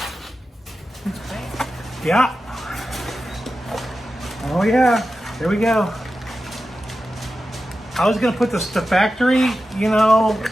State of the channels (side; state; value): both; normal; correlation 0.92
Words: Yeah. Oh yeah, there we go. I was gonna put the factory, you know,